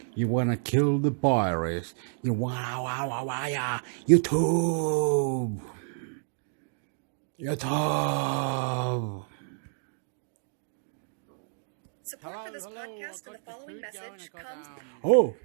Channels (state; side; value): silent; left; digital silence